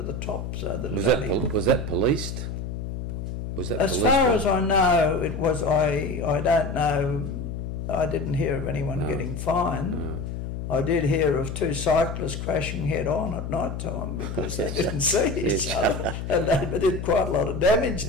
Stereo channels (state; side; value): noise; left; hum, 6 dB below the sound